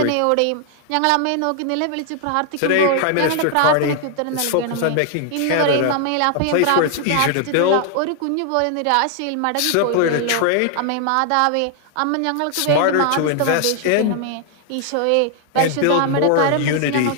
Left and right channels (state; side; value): different; both; correlation 0.00